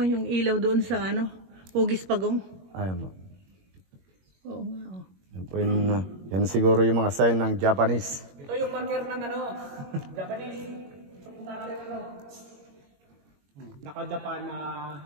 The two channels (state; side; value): late; left; 21 ms